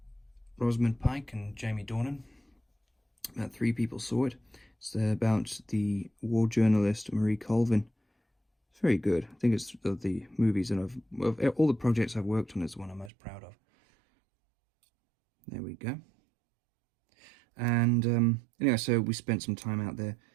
Rosamund Pike and Jamie Dornan. About 3 people saw it. It's about the war journalist Marie Colvin. It's very good. I think it's of the movies that of all the projects I've worked on, it's the one I'm most proud of. There we go. And anyway, so we spent some time out there,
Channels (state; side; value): drops out; left; at 13.1 s